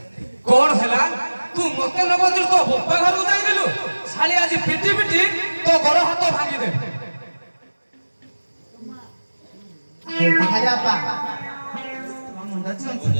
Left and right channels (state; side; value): inverted; both; correlation -1.00